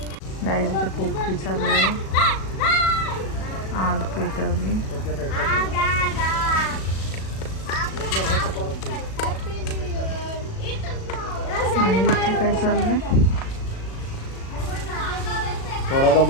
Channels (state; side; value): late; right; 37 ms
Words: गाईचं पोपटी चालू आहे. आग पेटवली. आणि इथे काय चाललंय. थोडासा